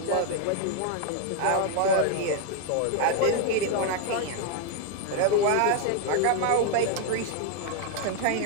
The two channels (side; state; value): both; different; correlation 0.01